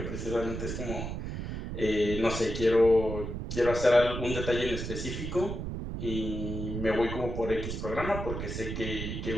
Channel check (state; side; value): noise; right; rumble, 5 dB below the sound